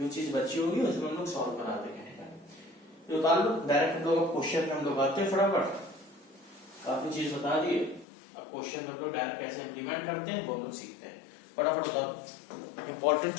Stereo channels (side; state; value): right; drops out; at 8.1 s